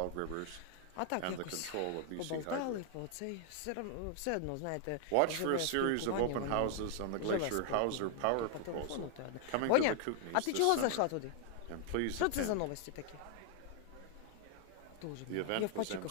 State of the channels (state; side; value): different; both; correlation 0.00